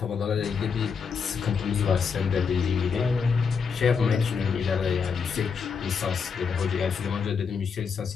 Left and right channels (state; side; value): quieter; right; 5.9 dB